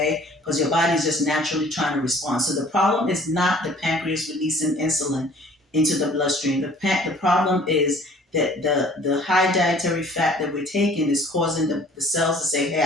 because your body is just naturally trying to respond. So the problem is not the pancreas releasing insulin into the bloodstream. The problem is that the high dietary fat that we're taking is causing the cells to say, hey,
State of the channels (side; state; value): both; normal; correlation 0.53